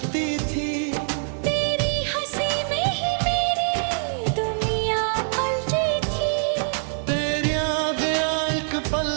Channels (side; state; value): left; silent; digital silence